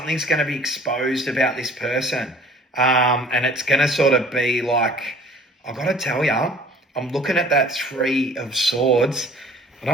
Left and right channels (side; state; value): both; normal; correlation 0.50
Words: going to be exposed about this person. And it's going to sort of be like, I've got to tell you, I'm looking at that Three of Swords. I